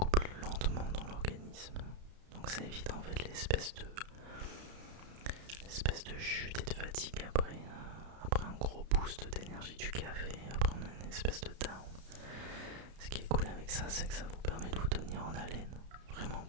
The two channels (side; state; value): left; late; 32 ms